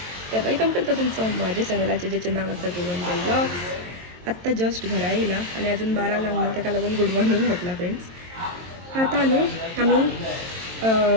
तर वेलकम करतो तुमचं माझ्या चॅनलाचे ज्याचे नाव असतं गोवंजल ब्लॉग्स. आत्ता जस्ट घरा येईला आणि अजून 12 लागणार त्याला लागून गुड मॉर्निंग म्हटलं फ्रेंड्स. आता न्हू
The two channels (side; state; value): left; late; 22 ms